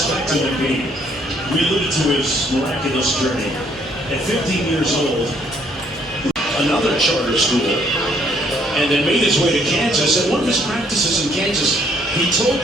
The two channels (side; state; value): both; normal; correlation 0.66